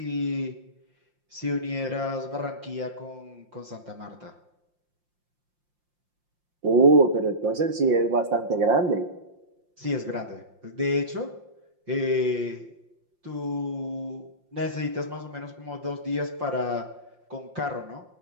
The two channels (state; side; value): late; left; 5.7 ms